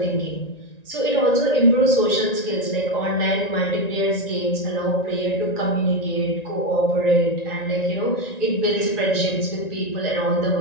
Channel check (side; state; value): right; late; 1.9 ms